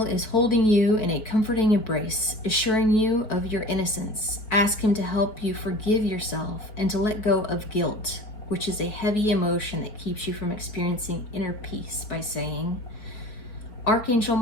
is holding you in a comforting embrace, assuring you of your innocence. Ask him to help you forgive yourself and to let go of guilt, which is a heavy emotion that keeps you from experiencing inner peace, by saying, Archangel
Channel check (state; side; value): late; right; 4.6 ms